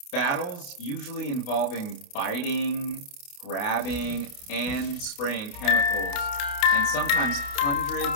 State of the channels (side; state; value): right; late; 28 ms